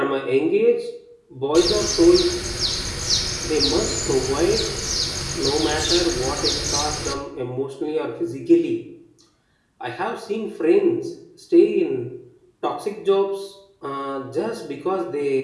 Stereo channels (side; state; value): both; identical; correlation 1.00